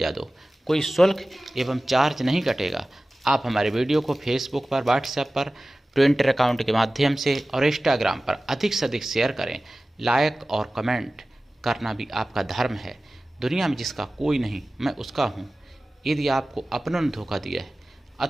दो। कोई शुल्क एवं चार्ज नहीं कटेगा। आप हमारे वीडियो को फेसबुक पर, व्हाट्सएप पर, ट्विटर अकाउंट के माध्यम से और इंस्टाग्राम पर अधिक से अधिक शेयर करें। लाइक और कमेंट करना भी आपका धर्म है। दुनिया में जिसका कोई नहीं, मैं उसका हूँ। यदि आपको अपनों ने धोखा दिया है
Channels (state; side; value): normal; both; correlation 0.97